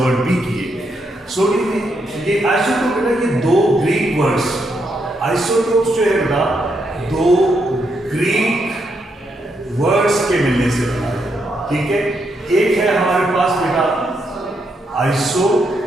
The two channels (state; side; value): normal; both; correlation 0.79